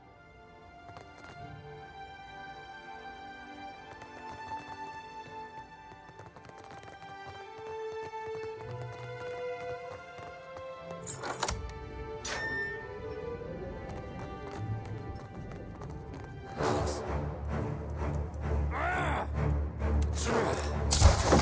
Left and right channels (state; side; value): identical; both; correlation 1.00